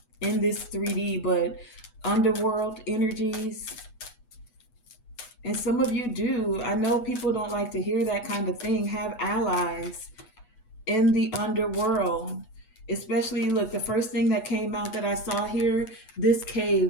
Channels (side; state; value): right; late; 8.2 ms